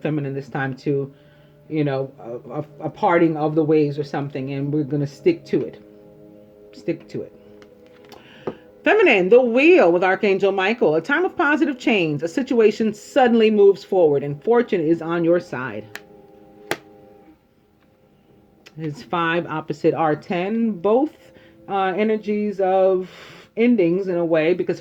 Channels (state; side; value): identical; both; correlation 1.00